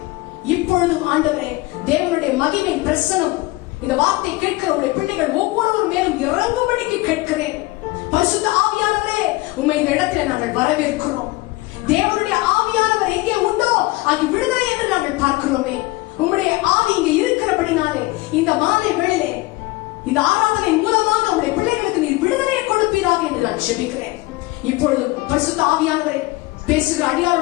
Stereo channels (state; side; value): quieter; right; 21.1 dB